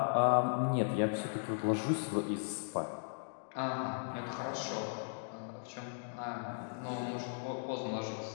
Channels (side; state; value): right; silent; digital silence